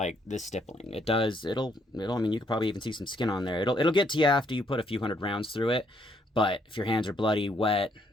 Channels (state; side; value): normal; both; correlation 0.71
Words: this stippling. It'll, I mean, you could probably even see some skin on there. It'll get to you after you put a few hundred rounds through it. But if your hands are bloody, wet,